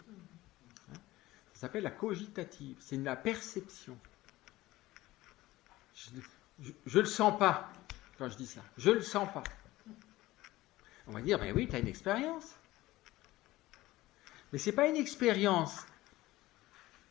Ça s'appelle la cogitative, c'est la perception. Je le sens pas quand je dis ça, je le sens pas. On va dire, mais oui, tu as une expérience. Mais c'est pas une expérience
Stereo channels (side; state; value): right; quieter; 17.6 dB